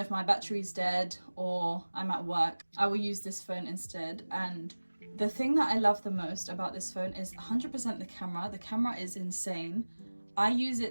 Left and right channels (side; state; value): both; inverted; correlation -1.00